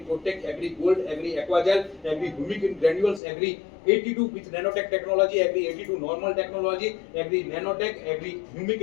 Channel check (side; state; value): right; drops out; at 3.2 s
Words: Agri gold, Agri aquagel, Agri humic granules, Agri 82 with nanotech technology, Agri 82 normal technology, Agri nanotech, Agri humic